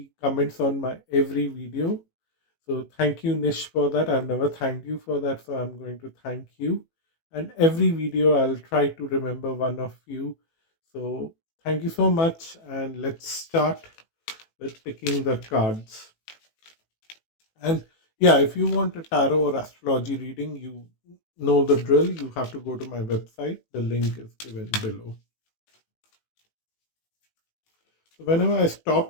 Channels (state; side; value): late; right; 18 ms